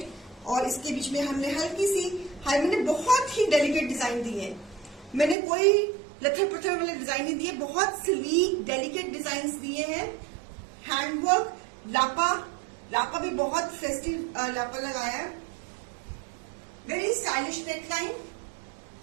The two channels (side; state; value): left; drops out; at 5.4 s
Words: और इसके बीच में हमने हल्की सी मैंने बहुत ही डेलिकेट डिजाइन दी है. मैंने कोई लथर पत्थर वाले डिजाइन नहीं दिए, बहुत स्लीक डेलिकेट डिजाइन दिए हैं. हैंडवर्क, लापा भी बहुत फेस्टिव लापा लगाया है. Very stylish neckline.